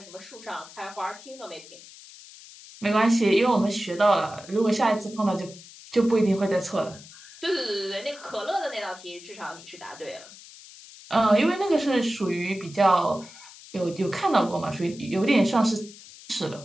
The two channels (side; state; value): left; noise; hiss, 19 dB below the sound